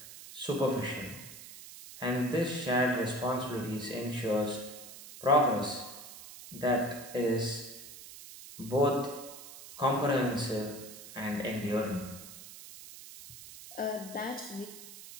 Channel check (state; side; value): noise; right; hiss, 15 dB below the sound